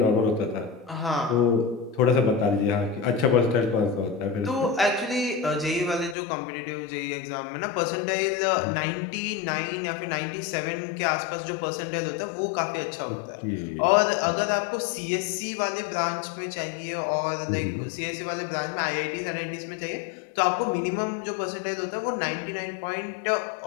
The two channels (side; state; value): right; drops out; at 6.2 s